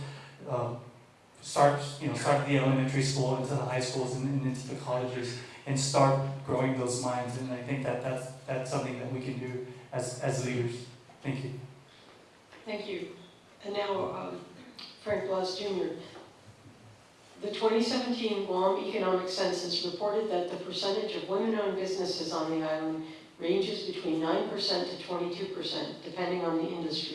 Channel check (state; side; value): identical; both; correlation 1.00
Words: start at the elementary school, into the high schools and into the colleges and start growing those minds. And I think that's something that we can do as leaders. Thank you. Thank you. And now, Frank Blas Jr. The 2017 Guam Economic Census reported that the percentage of women-owned businesses on the island ranges between 9% to 22%, depending on the